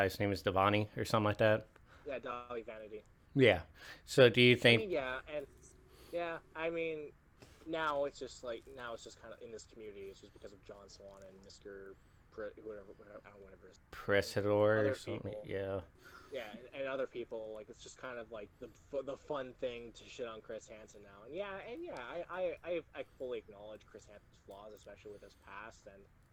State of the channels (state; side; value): identical; both; correlation 1.00